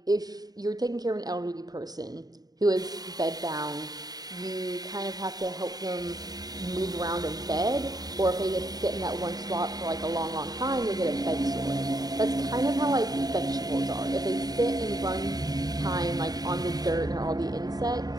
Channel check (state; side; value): late; left; 0.19 ms